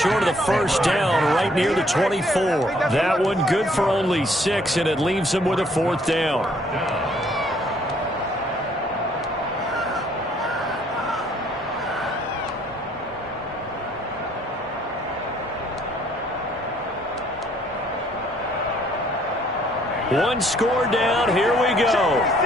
of the first down right near the 24. That one good for only 6, and it leaves him with a 4th down. One score down. Here we go.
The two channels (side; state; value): both; normal; correlation 0.63